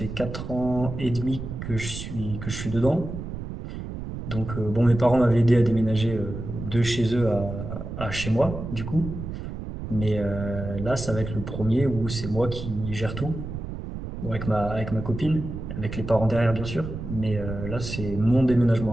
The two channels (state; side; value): noise; right; rumble, 7 dB below the sound